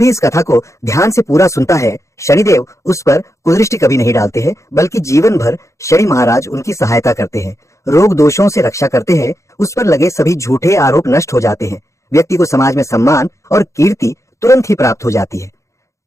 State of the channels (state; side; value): late; right; 0.15 ms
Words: इस कथा को ध्यान से पूरा सुनता है, शनिदेव उस पर कुदृष्टि कभी नहीं डालते हैं, बल्कि जीवन भर शनि महाराज उनकी सहायता करते हैं, रोग दोषों से रक्षा करते हैं, उस पर लगे सभी झूठे आरोप नष्ट हो जाते हैं, व्यक्ति को समाज में सम्मान और कीर्ति तुरंत ही प्राप्त हो जाती है।